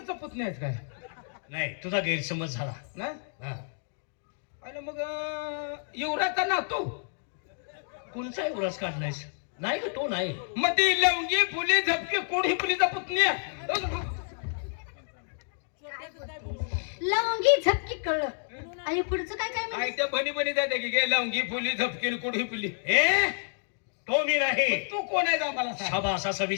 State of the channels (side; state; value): right; silent; digital silence